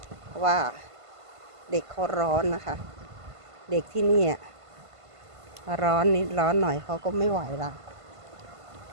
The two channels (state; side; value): late; left; 1.5 ms